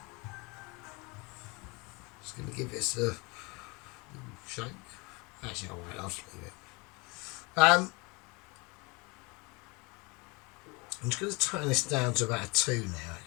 just going to give this a shake. Actually, I'll just leave it. I'm just going to turn this down to about a 2 now,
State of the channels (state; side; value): quieter; right; 27.9 dB